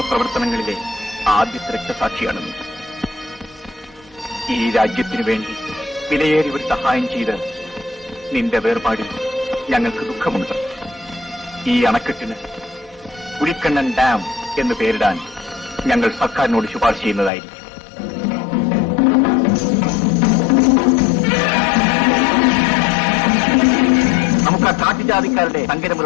പ്രവർത്തനങ്ങളിലെ ആദ്യത്തെ രക്തസാക്ഷിയാണ് നീ. ഈ രാജ്യത്തിനു വേണ്ടി വിലയേറിയ ഒരു സഹായം ചെയ്ത് നിന്റെ വേർപാടിൽ ഞങ്ങൾക്ക് ദുഃഖമുണ്ട്. ഈ അണക്കെട്ടിന് പുലിക്കണ്ണൻ ഡാം എന്ന് പേരിടാൻ ഞങ്ങൾ സർക്കാരിനോട് ശുപാർശ ചെയ്യുന്നതായിരിക്കും. നമുക്ക് ആ കാട്ടുജാതിക്കാരുടെ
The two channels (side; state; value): right; drops out; at 17.3 s